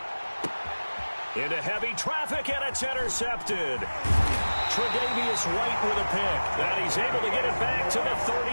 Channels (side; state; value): both; inverted; correlation -1.00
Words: Into heavy traffic, and it's intercepted. Tre'Davious White with a pick. And he's able to get it back to the